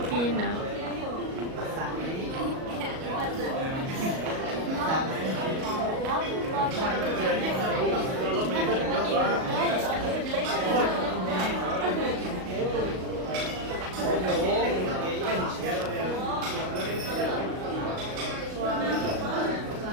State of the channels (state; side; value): late; left; 38 ms